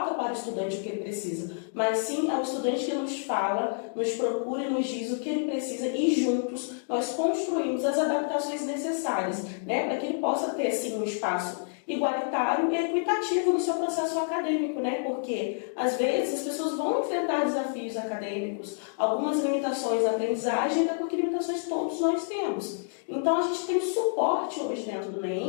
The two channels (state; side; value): silent; right; digital silence